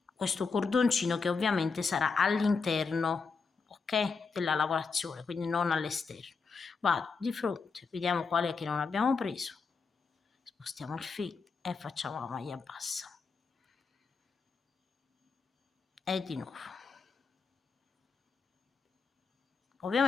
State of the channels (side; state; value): right; quieter; 4.9 dB